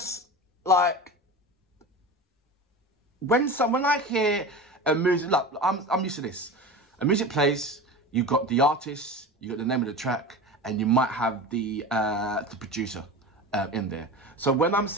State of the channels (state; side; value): normal; both; correlation 0.31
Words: like, when I hear a music, look, I'm used to this. A music plays, you've got the artist, you got the name of the track, and you might have the producer in there. So when I'm